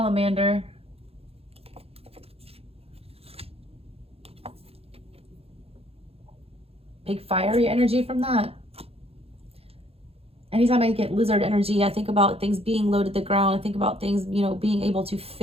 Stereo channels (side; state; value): left; late; 0.29 ms